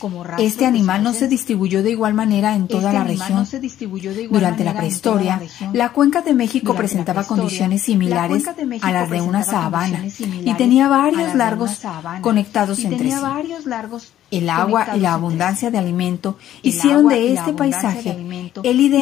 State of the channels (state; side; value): quieter; right; 12.1 dB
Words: Este animal no se distribuyó de igual manera en toda la región. Durante la prehistoria, la cuenca de México presentaba condiciones similares a las de una sabana y tenía varios lagos conectados entre sí. El agua y la abundancia de alimento hicieron de este paisaje el